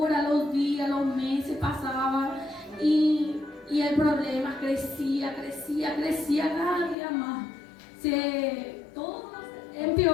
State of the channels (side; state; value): right; drops out; at 7.0 s